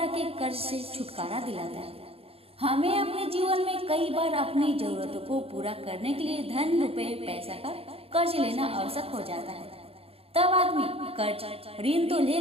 के कर्ज से छुटकारा दिलाता है। हमें अपने जीवन में कई बार अपनी जरूरतों को पूरा करने के लिए धन, रुपए, पैसा का कर्ज लेना आवश्यक हो जाता है। तब आदमी कर्ज ऋण तो ले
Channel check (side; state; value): left; late; 0.28 ms